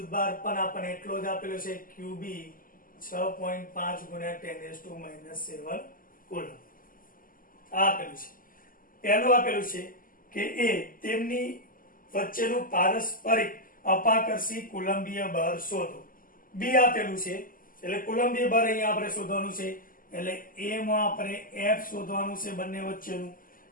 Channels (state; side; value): late; right; 0.41 ms